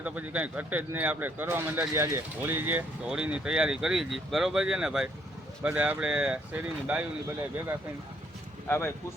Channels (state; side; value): normal; both; correlation 0.68